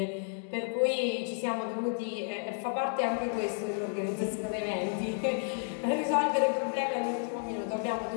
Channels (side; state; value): right; silent; digital silence